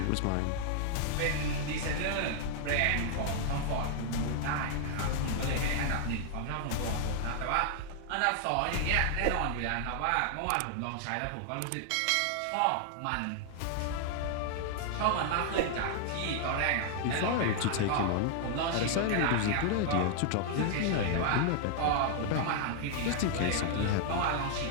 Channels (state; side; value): different; both; correlation 0.00